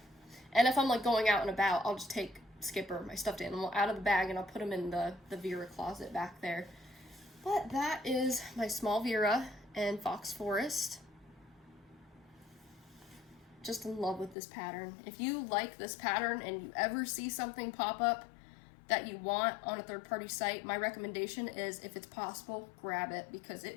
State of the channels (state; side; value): drops out; right; at 14.4 s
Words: and if I'm like going out and about, I'll just take Skipper, my stuffed animal, out of the bag, and I'll put him in the Vera closet back there. But that is my small Vera and Fox Forest. Just in love with this pattern. If you like this pattern and you ever see something pop up that you want on a third-party site, my recommendation is, if it's possible, grab it, because